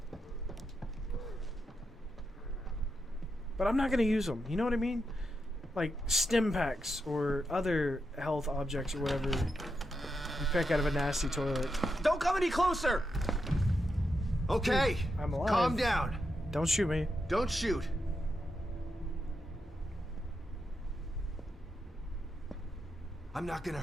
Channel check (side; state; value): both; normal; correlation 0.85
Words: but I'm not gonna use them. You know what I mean? Like stim packs or other health objects or whatever you pick out of a nasty toilet. Don't come any closer! Okay, I'm alive. calm down. Don't shoot me. Don't shoot. I'm not gonna